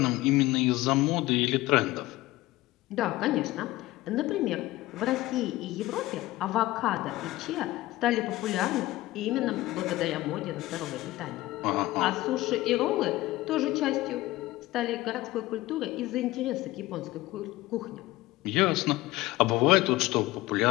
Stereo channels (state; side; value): quieter; right; 17.9 dB